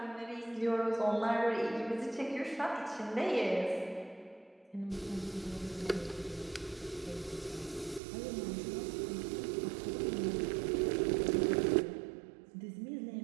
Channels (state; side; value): drops out; left; at 8.0 s